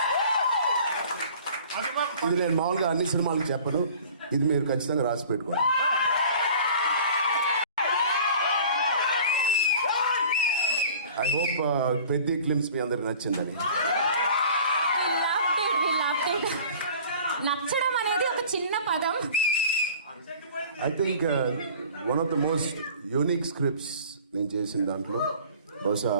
ఇది నేను మామూలుగా అన్ని సినిమాలకు చెప్పను, ఇది మీరు ఖచ్చితంగా రాసి పెట్టుకోండి. ఐ హోప్ పెద్ద క్లిమ్స్ మీ అందరికి నచ్చిందని. నచ్చడం అనేది ఒక చిన్న పదం. I think one of the most unique scripts నేను చేసిన దాంట్లో బహుశా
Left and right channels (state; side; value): inverted; both; correlation -0.46